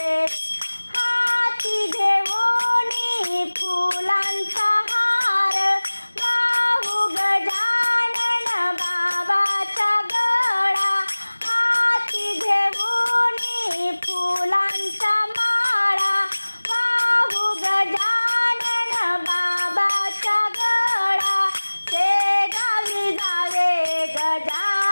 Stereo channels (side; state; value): both; inverted; correlation -1.00